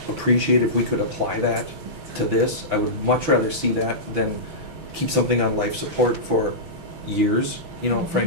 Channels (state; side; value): late; left; 6.0 ms